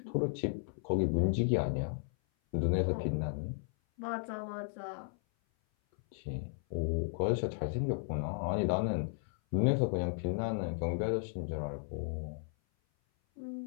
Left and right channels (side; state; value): right; silent; 55 dB below the other